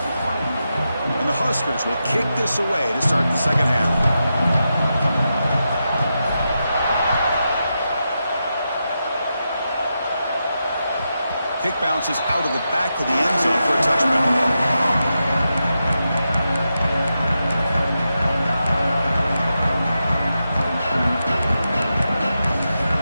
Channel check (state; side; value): inverted; both; correlation -0.88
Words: And the Huskers will kick this away to start the second half. Kick bounces out of the back of the end zone for a touchback.